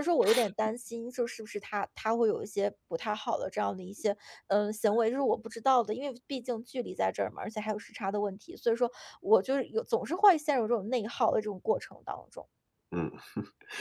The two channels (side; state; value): both; identical; correlation 1.00